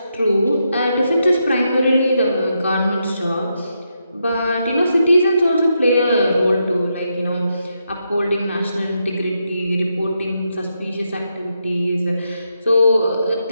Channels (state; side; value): inverted; both; correlation -0.82